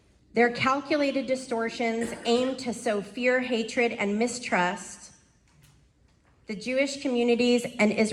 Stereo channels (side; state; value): both; identical; correlation 1.00